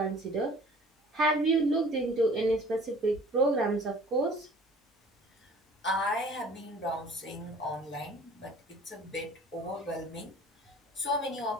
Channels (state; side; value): normal; both; correlation 0.48